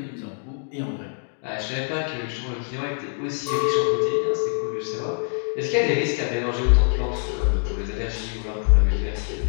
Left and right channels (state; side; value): silent; right; 62 dB below the other